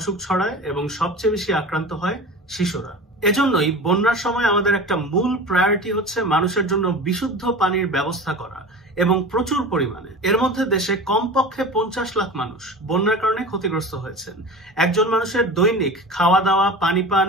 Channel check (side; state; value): both; normal; correlation 0.33